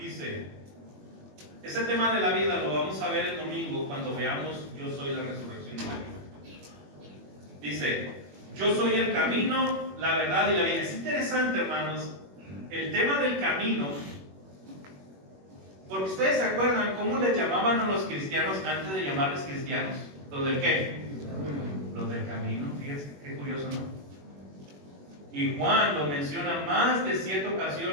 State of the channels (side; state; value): left; late; 21 ms